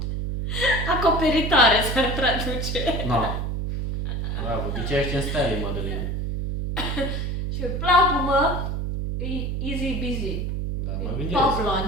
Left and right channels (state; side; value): noise; right; hum, 2 dB below the sound